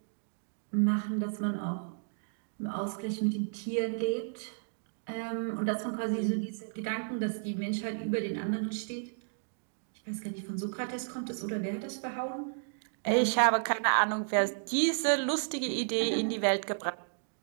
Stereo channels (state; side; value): silent; left; digital silence